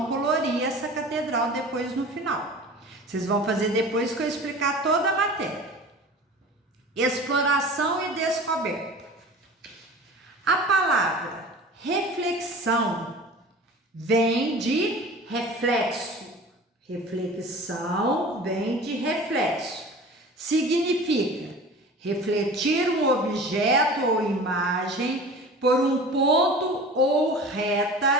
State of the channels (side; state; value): both; normal; correlation 0.39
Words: colorir essa catedral depois no final. Vocês vão fazer depois que eu explicar toda a matéria. Exploração e descoberta. A palavra reflexão vem de reflexo. Reflexão vem de reflexo. Significa refletir um objeto ou imagem por um ponto ou